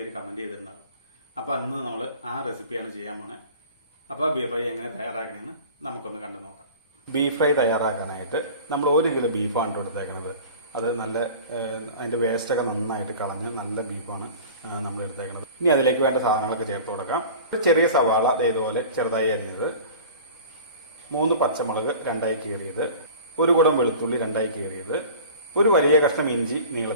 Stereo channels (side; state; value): both; inverted; correlation -0.40